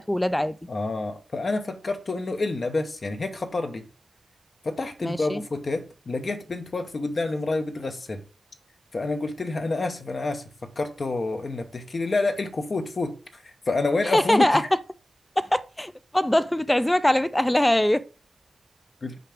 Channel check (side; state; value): both; normal; correlation 0.97